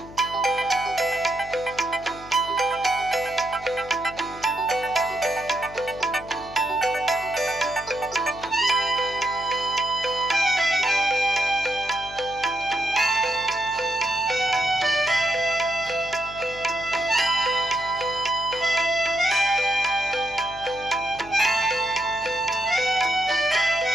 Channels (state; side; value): noise; left; hum, 18 dB below the sound